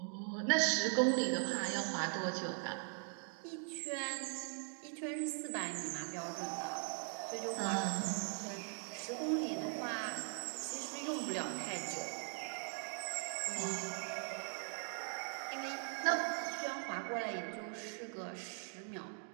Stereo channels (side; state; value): left; silent; 51 dB below the other